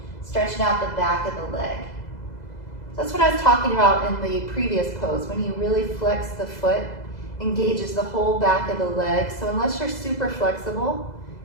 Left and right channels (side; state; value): right; late; 2.0 ms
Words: stretching out the back of the leg. That's what I was talking about in the previous pose. When you really flex the foot, engages the whole back of the leg. So unless you're super flexible